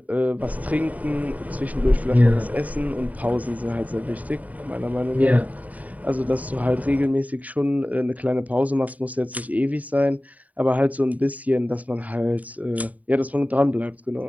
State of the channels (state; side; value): late; left; 0.072 ms